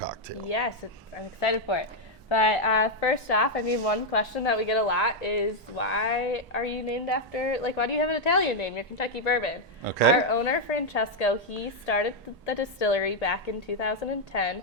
Yes, I'm excited for it. But first off, one question that we get a lot is, why are you named after, why do you have an Italian name? You're Kentucky Bourbon. Okay. Our owner, Francesco, he started the distillery back in 2010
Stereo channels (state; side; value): normal; both; correlation 0.00